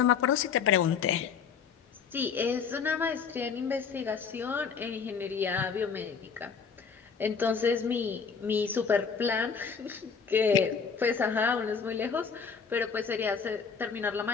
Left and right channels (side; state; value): right; quieter; 6.1 dB